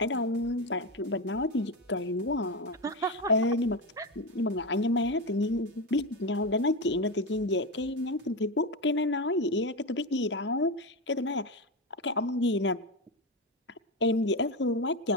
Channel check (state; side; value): normal; both; correlation 0.15